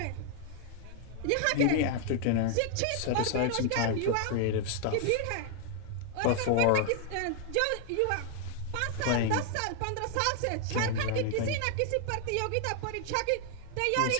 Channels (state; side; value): different; both; correlation 0.00